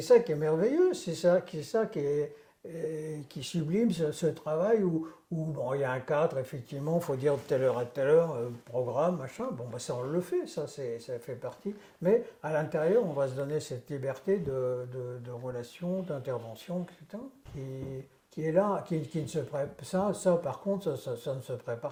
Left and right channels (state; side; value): identical; both; correlation 1.00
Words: qui est merveilleux. C'est ça qui sublime ce travail où bon, il y a un cadre, effectivement, il faut dire de telle heure à telle heure, programme, machin. Bon, bah, ça, on le fait, ça fait partie. Mais à l'intérieur, on va se donner cette liberté de relation, d'intervention, etc., qui est là, qui ne se prépare. Ça, par contre, ça ne se